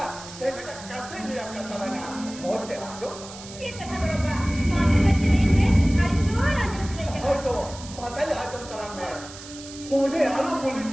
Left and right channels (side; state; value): right; noise; hiss, 15 dB below the sound